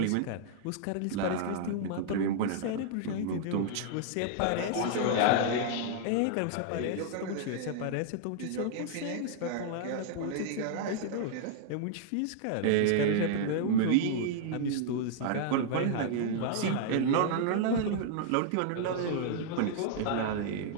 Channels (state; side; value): different; both; correlation -0.01